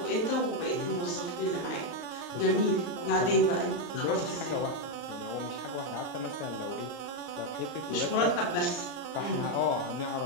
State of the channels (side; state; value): right; late; 33 ms